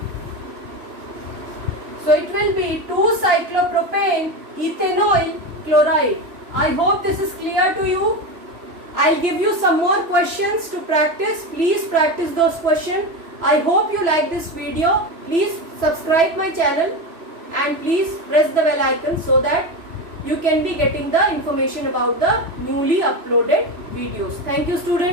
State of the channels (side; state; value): left; late; 3.0 ms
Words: So it will be 2 cyclopropane ethanoyl chloride. I hope this is clear to you. I'll give you some more questions to practice. Please practice those questions. I hope you like this video. Please subscribe my channel and please press the bell icon so that you can be getting the information about the newly uploaded videos. Thank you,